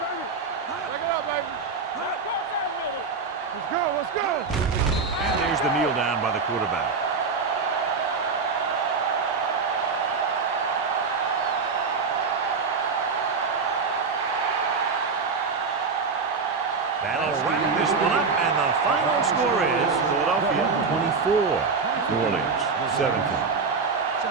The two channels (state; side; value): quieter; left; 4.8 dB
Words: Take it up, baby. Cross that middle. Let's go. And there's the kneel down by the quarterback. That'll wrap this one up, and the final score is Philadelphia 24, New Orleans 17.